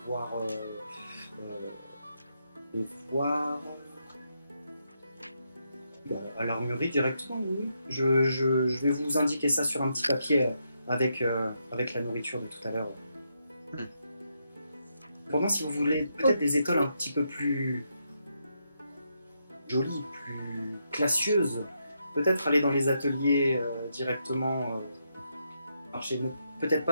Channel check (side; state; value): both; inverted; correlation -0.81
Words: voir. À l'armurerie directement, oui. Je vais vous indiquer ça sur un petit papier avec la nourriture de tout à l'heure. Cependant, si vous voulez peut-être des étoiles un petit peu plus jolies, plus classieuses, peut-être aller dans les ateliers directement marché. Peut-être